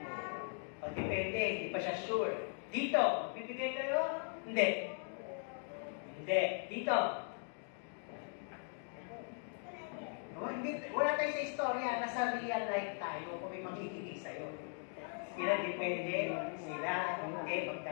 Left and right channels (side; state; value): right; silent; 51 dB below the other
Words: O, depende, hindi pa siya sure. Dito, bibigyan kayo? Hindi. Hindi. Dito. No, hindi. Wala tayo sa istorya, nasa real life tayo kung may manghihingi sa'yo. Sila depende, sila hindi,